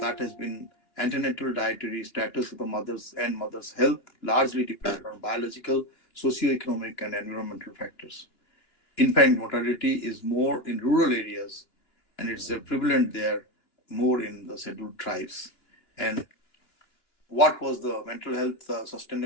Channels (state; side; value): late; right; 2.9 ms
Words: that has been antenatal dietary status of the mothers and mother's health, largely dependent on biological, socio-economic, and environmental factors. Infant mortality is more in rural areas, and it's prevalent there more in the scheduled tribes. And what was the mental health